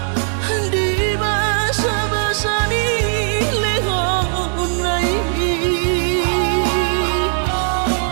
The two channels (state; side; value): silent; left; digital silence